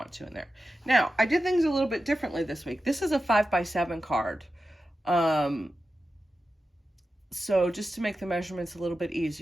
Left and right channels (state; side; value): normal; both; correlation 0.92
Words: to in there. Now, I did things a little bit differently this week. This is a 5x7 card. So just to make the measurements a little bit